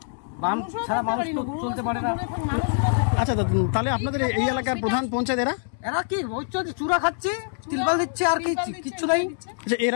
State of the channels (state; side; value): silent; right; digital silence